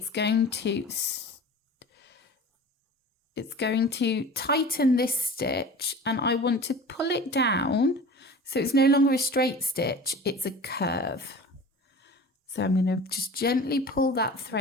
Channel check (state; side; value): normal; both; correlation 0.38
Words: going to tighten this stitch, and I want to pull it down so it's no longer a straight stitch, it's a curve. So I'm going to just gently pull that